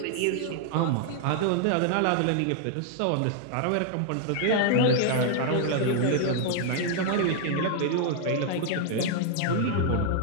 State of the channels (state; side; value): different; both; correlation 0.00